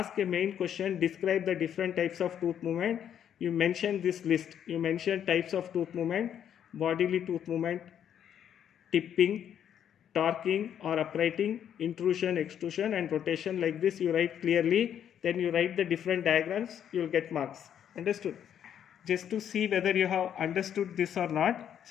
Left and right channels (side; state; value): right; quieter; 9.3 dB